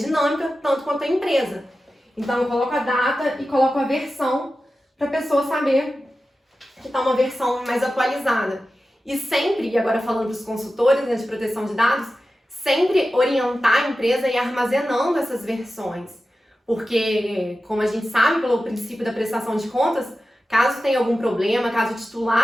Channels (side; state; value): both; normal; correlation 0.93